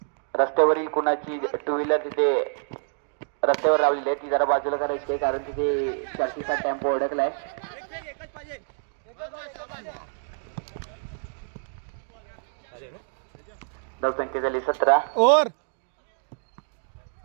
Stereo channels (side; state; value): left; silent; digital silence